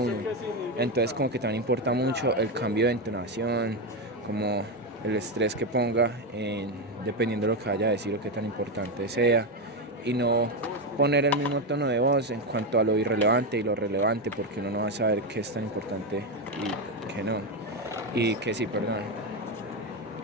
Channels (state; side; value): normal; both; correlation 0.10